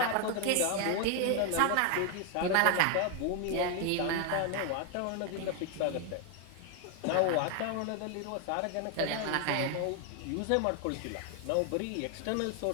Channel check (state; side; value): different; both; correlation 0.01